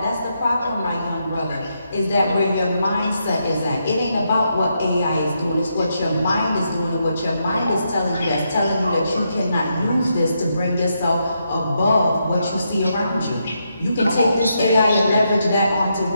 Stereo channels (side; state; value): both; inverted; correlation -0.81